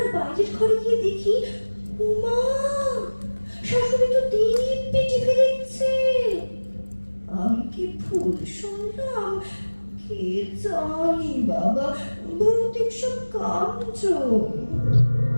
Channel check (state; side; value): inverted; both; correlation -1.00